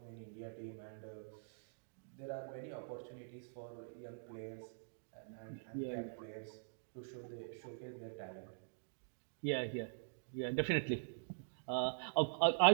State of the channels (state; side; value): silent; left; digital silence